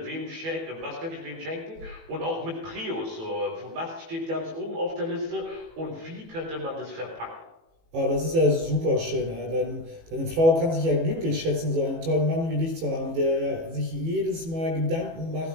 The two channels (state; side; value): late; left; 18 ms